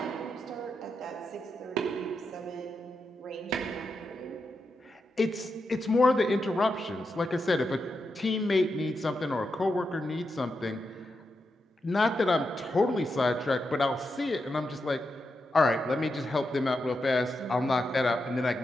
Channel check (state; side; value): normal; both; correlation 0.86